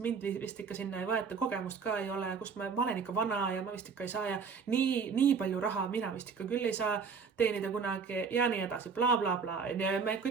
vist ikka sinna ei võeta, kogemust ka ei ole, kus ma olen ikka vana ja ma vist ikka ei saa ja nii palju raha mina vist ikka küll ei saa teenida kunagi ja nii edasi, bla, bla, bla. Ja me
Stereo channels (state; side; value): quieter; left; 5.6 dB